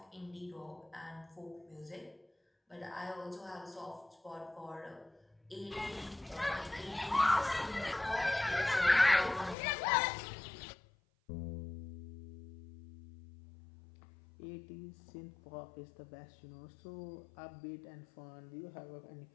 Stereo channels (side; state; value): right; drops out; at 9.6 s